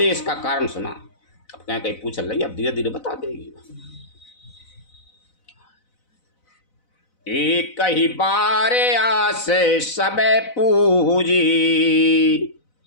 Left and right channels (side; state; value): right; late; 4.0 ms